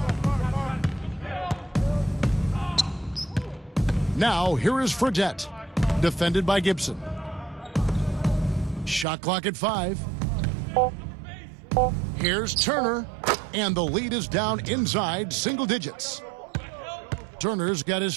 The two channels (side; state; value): left; drops out; at 9.1 s